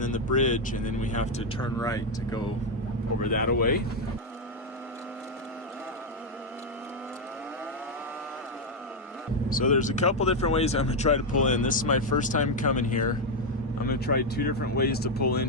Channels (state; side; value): normal; both; correlation 0.03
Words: then the bridge, and then we have to turn right to go over that away. So there's a couple different ways I'm gonna try to pull in. This is my first time coming here. I'm gonna try 2 different ways to pull in